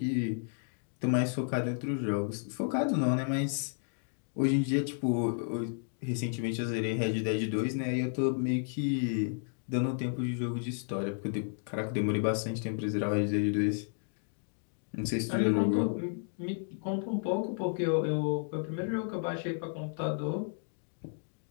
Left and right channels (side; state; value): right; silent; digital silence